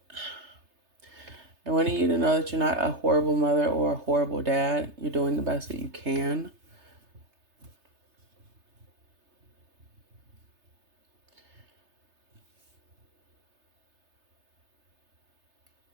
I want you to know that you're not a horrible mother or a horrible dad. You're doing the best that you can.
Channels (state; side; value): late; left; 3.3 ms